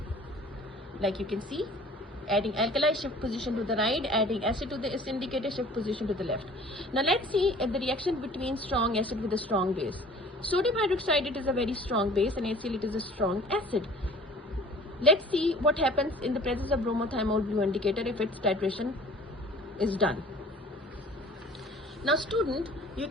Like you can see, adding alkali, shift position to the right, adding acid to this indicator, shift position to the left. Now let's see the reaction between strong acid with a strong base. Sodium hydroxide, it is a very strong base, and HCl, it is a strong acid. Let's see what happens in the presence of bromothymol blue indicator if its titration is done. Now student, you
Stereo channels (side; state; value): both; normal; correlation 0.48